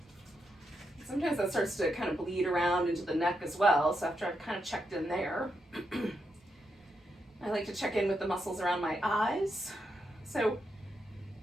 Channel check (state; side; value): normal; both; correlation 0.83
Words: sometimes that starts to kind of bleed around into the neck as well. So after I've kind of checked in there, I like to check in with the muscles around my eyes. So